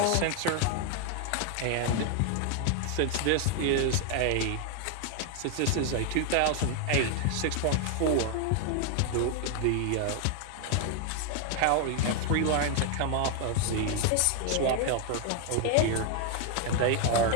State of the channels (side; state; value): both; different; correlation 0.00